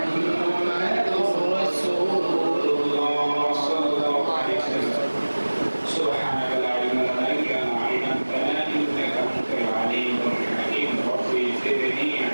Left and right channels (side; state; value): both; inverted; correlation -1.00